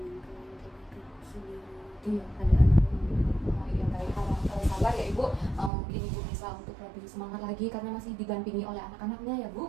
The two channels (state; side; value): drops out; left; at 5.7 s